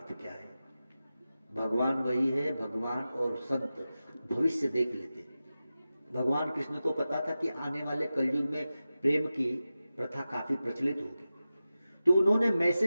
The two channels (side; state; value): both; inverted; correlation -0.94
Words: क्या है। भगवान वही है, भगवान और संत भविष्य देख लेते। भगवान कृष्ण को पता था कि आने वाले कलयुग में प्रेम की प्रथा काफी प्रचलित होगी, तो उन्होंने